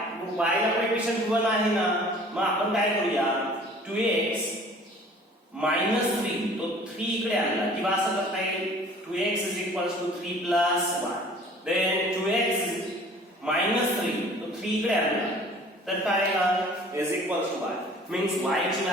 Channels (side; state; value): both; normal; correlation 0.49